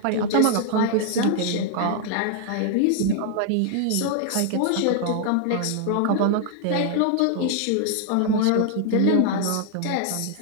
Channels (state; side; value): different; both; correlation 0.00